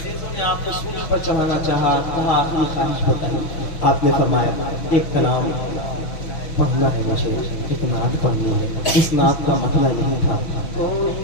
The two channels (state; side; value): late; right; 6.1 ms